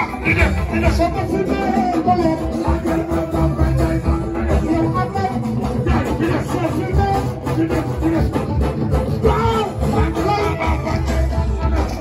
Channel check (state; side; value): identical; both; correlation 1.00